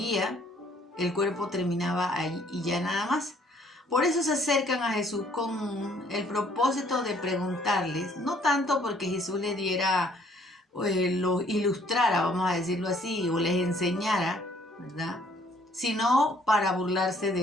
el cuerpo terminaba ahí y ya nada más. Por eso se acercan a Jesús con el propósito de preguntarles, no tanto porque Jesús les diera, lo ilustrara, vamos a decirlo así, o les enseñara, ¿verdad?, sino para burlarse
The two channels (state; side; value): normal; both; correlation 0.62